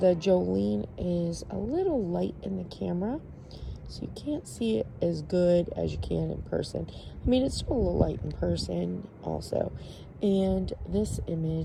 Jolene is a little light in the camera, so you can't see it as good as you can in person. I mean, it's still a little light in person also. And this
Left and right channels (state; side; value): identical; both; correlation 1.00